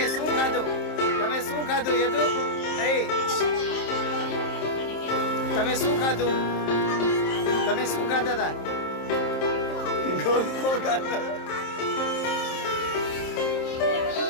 શું ખાધું? શું ખાધું યદુ? તમે શું ખાધું? તમે શું ખાધા હતા? ગોલ્ફો ખાધા.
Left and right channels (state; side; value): late; right; 27 ms